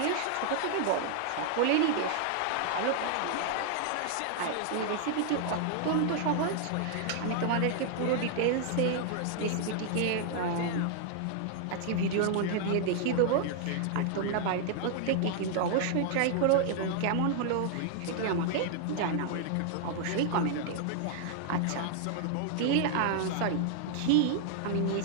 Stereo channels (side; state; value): both; different; correlation 0.00